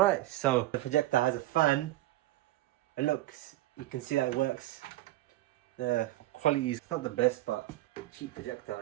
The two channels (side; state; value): left; quieter; 16.5 dB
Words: so the projector has a fan. It looks, you can see that it works. The quality is not the best, but cheap